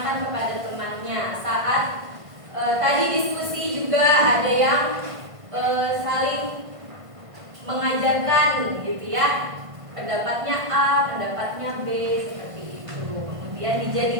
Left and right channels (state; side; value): late; left; 1.5 ms